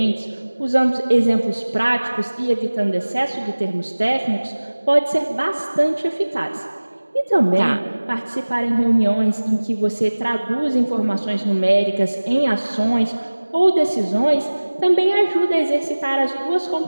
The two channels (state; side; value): inverted; both; correlation -1.00